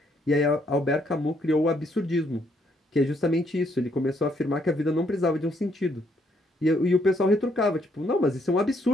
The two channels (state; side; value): normal; both; correlation 0.71